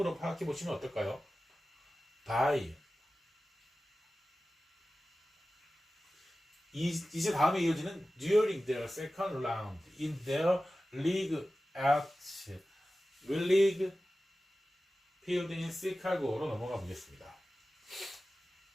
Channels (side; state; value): both; normal; correlation 0.95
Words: 파악해 보시면 어떨까요? 바이. 이제 다음에 이어지는 during their second round in their league at Willig Field in Chicago로 넘어가 보겠습니다.